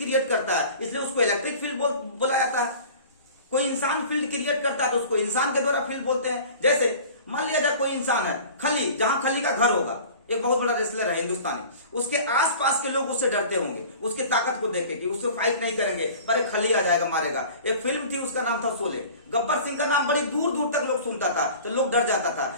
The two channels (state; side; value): inverted; both; correlation -0.42